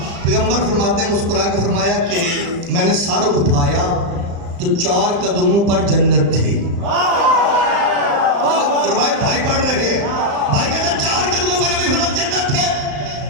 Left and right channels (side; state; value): left; late; 35 ms